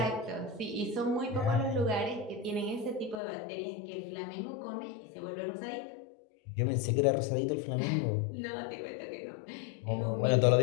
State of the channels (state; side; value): drops out; right; at 3.2 s